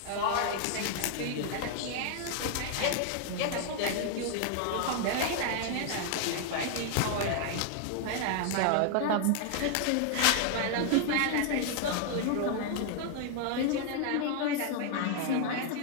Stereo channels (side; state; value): both; different; correlation 0.00